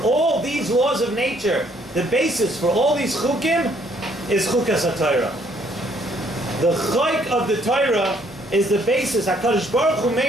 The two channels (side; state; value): both; normal; correlation 0.66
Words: these laws of nature, the basis for all these chukim is chukas HaTorah. The chayk of the Torah is the basis. HaKadosh Baruch Hu